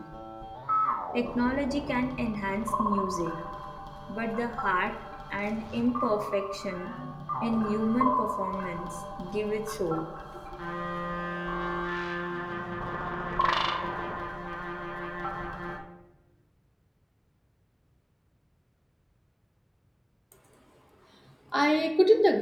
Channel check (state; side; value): identical; both; correlation 1.00